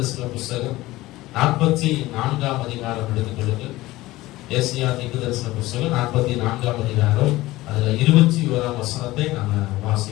புத்தகம் 44ஆம் அதிகாரம் எடுத்துக்கொள்ளுங்கள். ஏசாயா தீர்க்கதரிசன புத்தகம் 44ஆம் அதிகாரம், அதுல 21ஆம் வசனத்தை நாம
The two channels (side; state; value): right; quieter; 18.1 dB